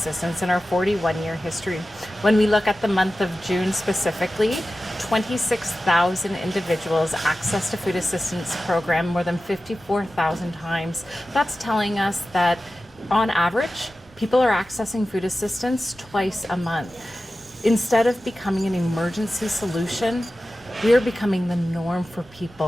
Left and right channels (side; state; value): both; normal; correlation 0.94